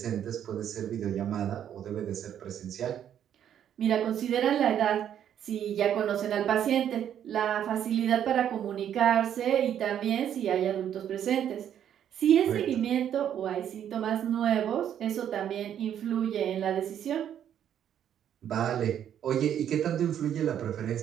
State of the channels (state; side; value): quieter; left; 9.8 dB